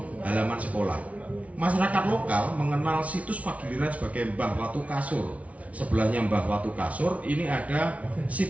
halaman sekolah. Masyarakat lokal mengenal situs Pagiliran sebagai Mbah Watu Kasur. Sebelahnya Mbah Watu Kasur ini ada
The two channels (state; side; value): late; left; 0.066 ms